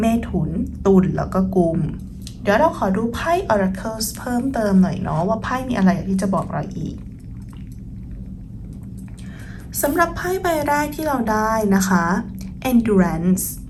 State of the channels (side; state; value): both; identical; correlation 1.00